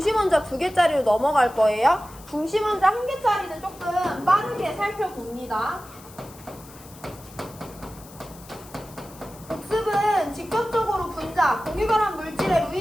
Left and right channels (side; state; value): left; noise; hiss, 21 dB below the sound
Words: 2개짜리로 넘어갈 거예요. 중심원자 1개짜리는 조금 빠르게 살펴봅니다. 복습은 직접적으로 분자, 공유결합 물질의